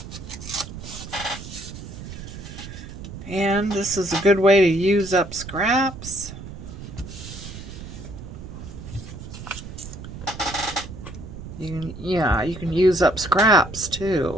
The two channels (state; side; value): noise; right; rumble, 11 dB below the sound